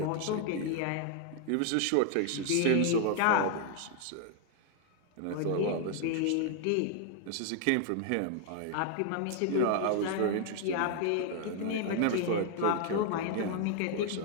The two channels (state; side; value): different; both; correlation 0.00